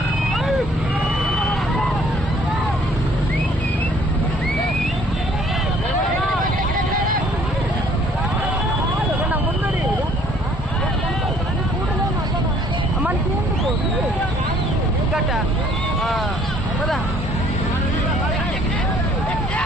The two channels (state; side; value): normal; both; correlation 0.59